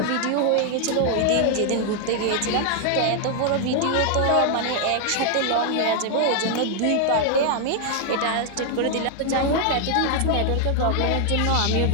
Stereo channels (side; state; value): both; different; correlation 0.00